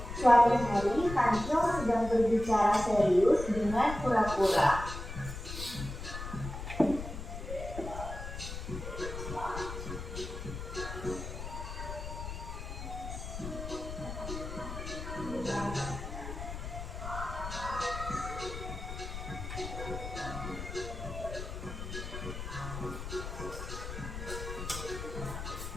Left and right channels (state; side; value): noise; left; rumble, 7 dB below the sound